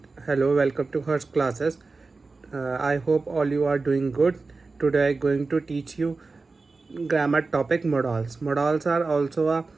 to Hers classes. I hope all you are doing good. Today I'm going to teach you grammar topic modals. Modals are also a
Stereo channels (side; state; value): left; quieter; 3.9 dB